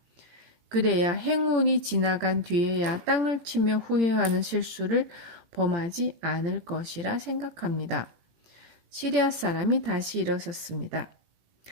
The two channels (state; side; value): late; left; 17 ms